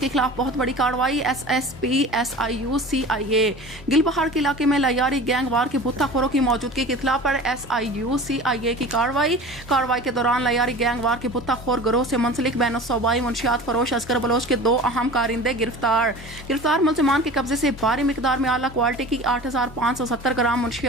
خلاف بہت بڑی کارروائی SSP SIU-CIA گل پہاڑ کے علاقے میں لیاری گینگ وار کے بھتہ خوروں کی موجودگی کی اطلاع پر SIU-CIA کی کارروائی کے دوران لیاری گینگ وار کے بھتہ خور گروہ سے منسلک بین الصوبائی منشیات فروش اصغر بلوچ کے 2 اہم کارندے گرفتار ملزمان کے قبضے سے بھاری مقدار میں اعلیٰ کوالٹی کی 8570 گرام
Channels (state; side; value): normal; both; correlation 0.38